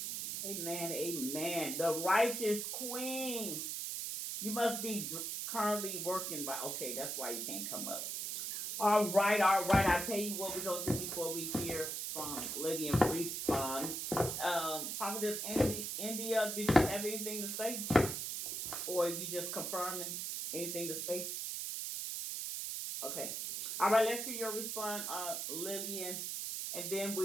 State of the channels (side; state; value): right; noise; hiss, 3 dB below the sound